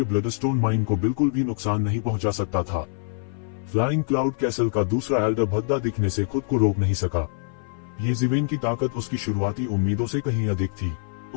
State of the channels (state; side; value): silent; right; 57 dB below the other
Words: ब्लडस्टोन माइन को बिल्कुल भी नुकसान नहीं पहुंचा सकता था। फ्लाइंग क्लाउड कैसल का दूसरा एल्डर भद्दा दिखने से खुद को रोक नहीं सका। ये ज़िवेन की ताकत उसकी शुरुआती उम्मीदों से कहीं अधिक थी।